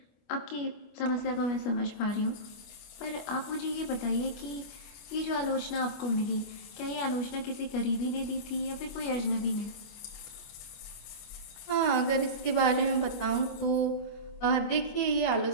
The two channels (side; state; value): right; late; 25 ms